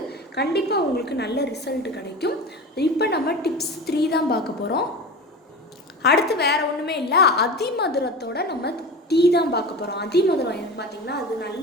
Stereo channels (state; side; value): normal; both; correlation 0.31